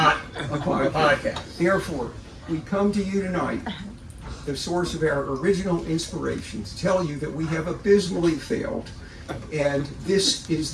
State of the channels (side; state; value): both; identical; correlation 1.00